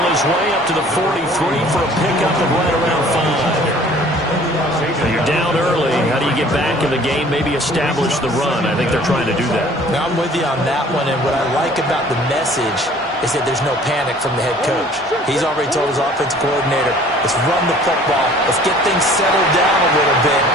his way up to the 43 for a pickup of right around 5. So you're down early. How do you get back in the game? Maybe establish the run. I think they're trying to do that. Now, I'm with you on that one, and what I like about the message is that there's no panic from the head coach. He's already told his offensive coordinator, let's run the football, let's get things settled down a little bit,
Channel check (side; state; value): both; normal; correlation 0.52